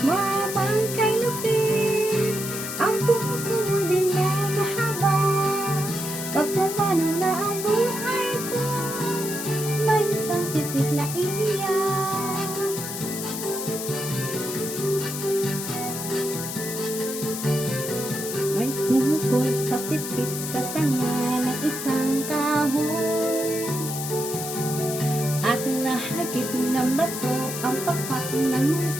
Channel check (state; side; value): noise; left; hiss, 6 dB below the sound